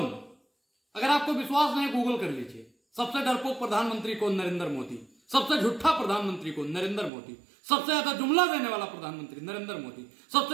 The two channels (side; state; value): left; drops out; at 7.1 s